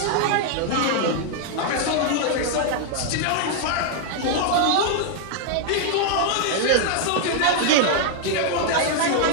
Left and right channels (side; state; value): both; different; correlation 0.00